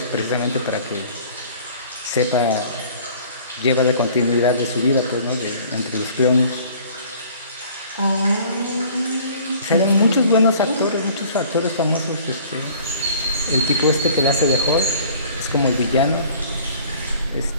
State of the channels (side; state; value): both; inverted; correlation -0.51